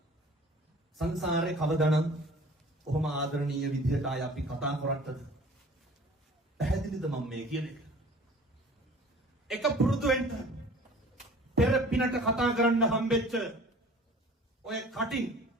සංසාරේ කවදානම් කොහොම ආදරණීය විදිහට ආය අපි කතා කරත්තද පැහැදිලිද මම මේ කියන එක පුරුදු වෙන්න පෙර පිනට කතා කරන්න හම්බෙච්ච ඔය කටින්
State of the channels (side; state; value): both; normal; correlation 0.47